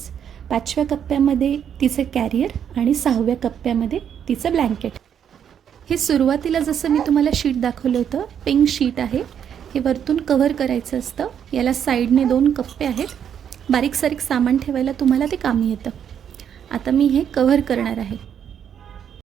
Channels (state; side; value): quieter; left; 8.6 dB